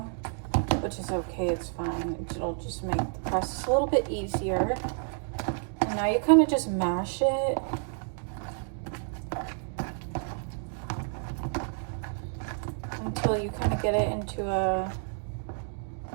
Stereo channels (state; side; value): silent; left; 58 dB below the other